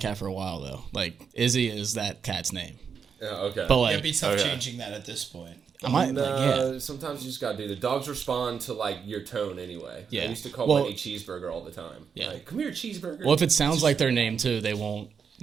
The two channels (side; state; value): left; quieter; 6.5 dB